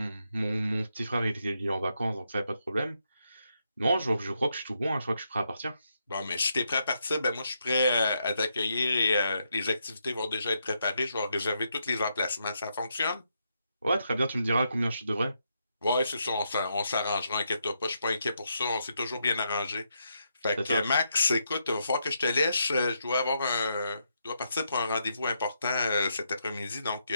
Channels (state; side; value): inverted; both; correlation -0.80